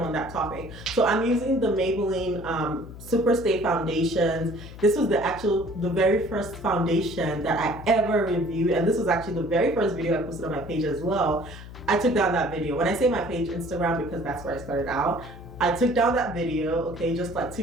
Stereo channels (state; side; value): noise; left; hum, 14 dB below the sound